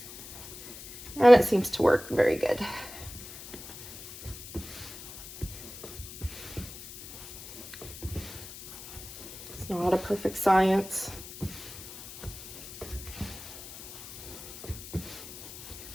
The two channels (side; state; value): left; noise; hiss, 14 dB below the sound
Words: And it seems to work very good. Not a perfect science.